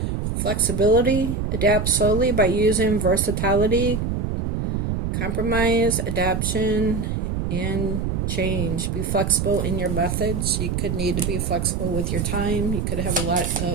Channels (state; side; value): noise; right; rumble, 1 dB below the sound